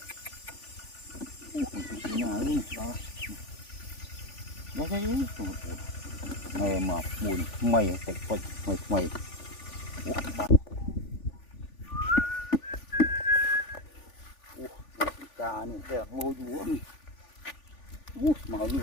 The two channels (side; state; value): right; late; 3.5 ms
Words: cái nhà luôn đó đấy này mà buồn mày phải quay mày cá này đẹp ngô dúa màu như